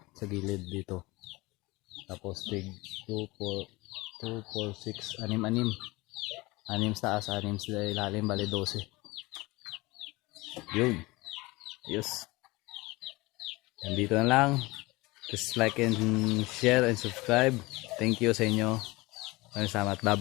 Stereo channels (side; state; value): right; quieter; 22.3 dB